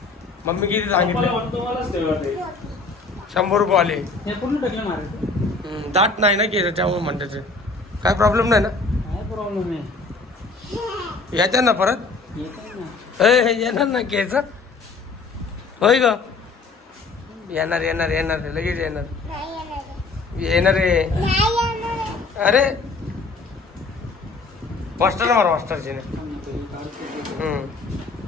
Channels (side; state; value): right; quieter; 3.9 dB